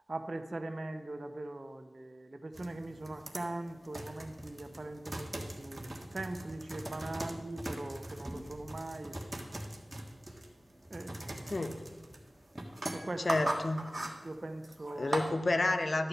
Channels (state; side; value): normal; both; correlation 0.96